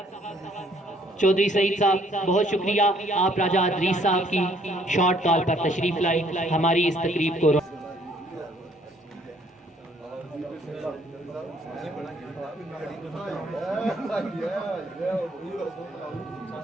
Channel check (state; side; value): normal; both; correlation 0.63